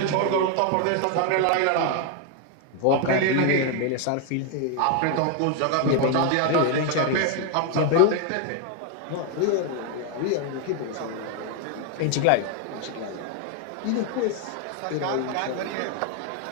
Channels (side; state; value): both; different; correlation 0.01